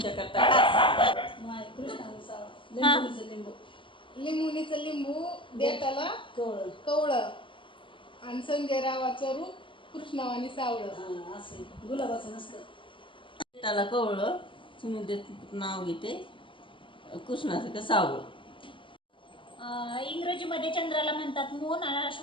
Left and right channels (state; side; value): late; right; 0.25 ms